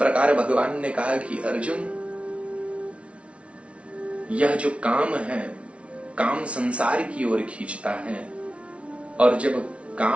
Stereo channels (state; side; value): late; left; 0.061 ms